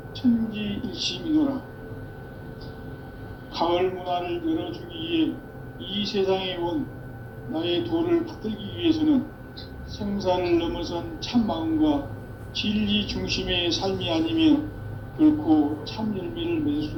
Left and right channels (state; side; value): identical; both; correlation 1.00